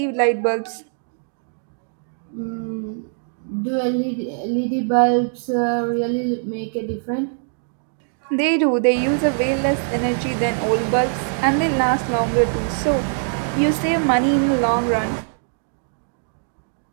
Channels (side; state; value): left; silent; digital silence